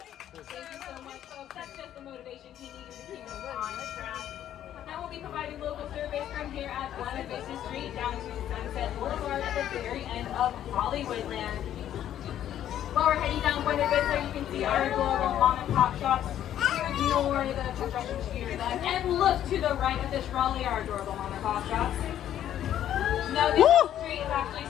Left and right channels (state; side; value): quieter; right; 11.1 dB